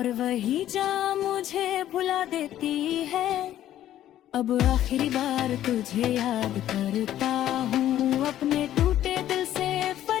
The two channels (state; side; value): quieter; right; 12.3 dB